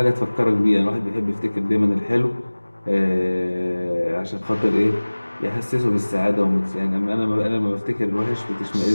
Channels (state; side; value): inverted; both; correlation -1.00